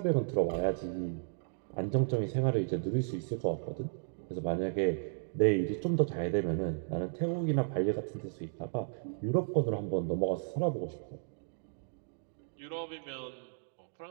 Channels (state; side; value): silent; left; digital silence